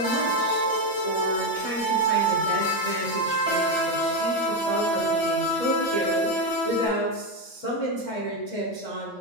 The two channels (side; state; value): right; late; 8.8 ms